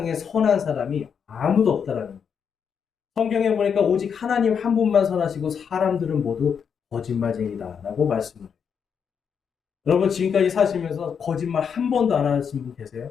선한 사람이 아무도 없다라는 거예요. 성경에 보니까 오직 하나님 한 분만 선하시고 사람들은 모두 거짓말쟁이다라고 말씀을 해요. 여러분, 지금까지 사시면서 거짓말 한 번도 안 하신 분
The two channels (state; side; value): quieter; right; 7.0 dB